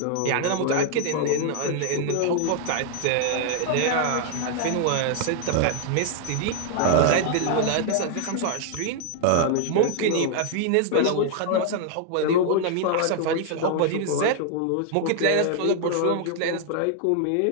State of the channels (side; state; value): both; different; correlation 0.00